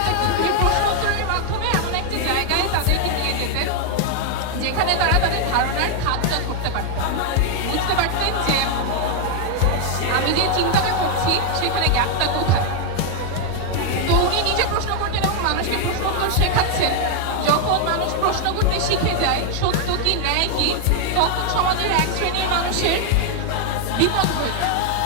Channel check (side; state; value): both; different; correlation 0.00